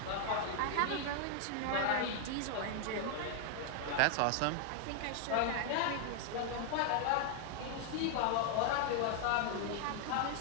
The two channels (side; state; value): both; different; correlation 0.00